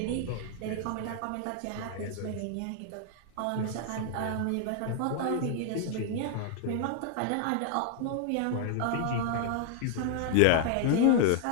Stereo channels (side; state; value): both; different; correlation 0.00